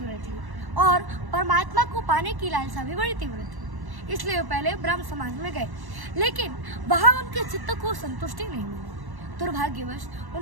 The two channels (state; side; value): late; left; 1.1 ms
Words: थी और परमात्मा को पाने की लालसा भी बड़ी तीव्र थी। इसलिए वे पहले ब्रह्म समाज में गए, लेकिन वहां उनके चित्त को संतुष्टि नहीं मिली। दुर्भाग्यवश